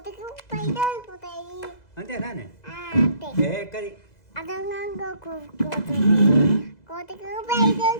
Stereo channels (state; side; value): late; right; 2.0 ms